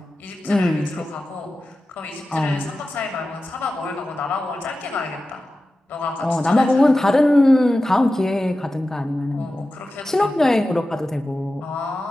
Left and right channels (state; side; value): normal; both; correlation 0.94